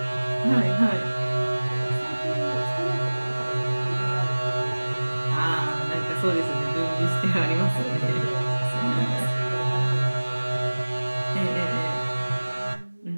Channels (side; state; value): both; inverted; correlation -1.00